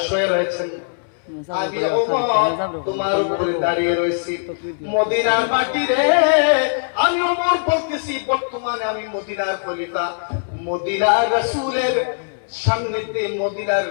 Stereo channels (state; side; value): silent; right; 64 dB below the other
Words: শুয়ে রয়েছেন, আমি ওমর তোমার উপরে দাঁড়িয়ে রয়েছি। মদিনার মাটি রে, আমি ওমর বলতেছি বর্তমানে আমি মদিনার খলিফা, মদিনার রাসূলের সান্নিধ্যে, মদিনার